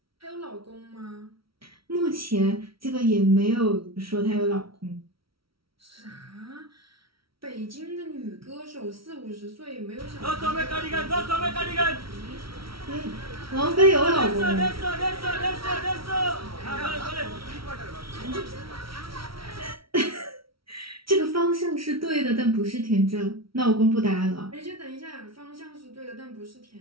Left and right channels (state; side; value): late; left; 0.75 ms